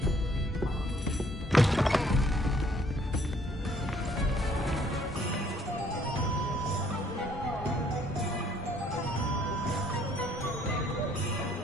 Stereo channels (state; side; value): normal; both; correlation 0.63